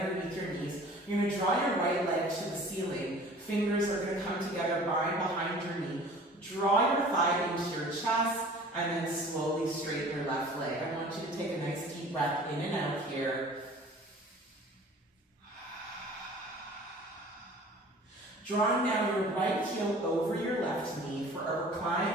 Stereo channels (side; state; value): both; normal; correlation 0.46